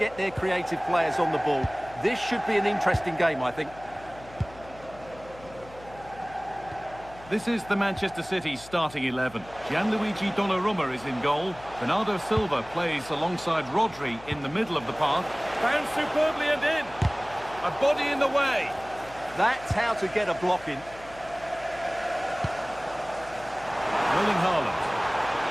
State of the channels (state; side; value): noise; left; hum, 20 dB below the sound